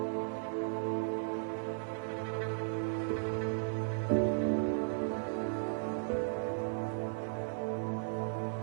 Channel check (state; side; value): silent; left; 54 dB below the other